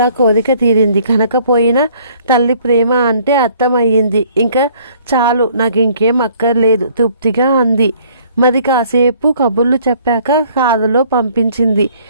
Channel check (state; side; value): inverted; both; correlation -0.59